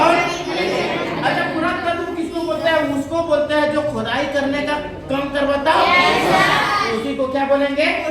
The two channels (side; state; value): both; identical; correlation 1.00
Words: अच्छा, पुरातत्व किसको बोलते हैं? उसको बोलते हैं जो खुदाई करने का काम करवाता है, उसी को क्या बोलेंगे?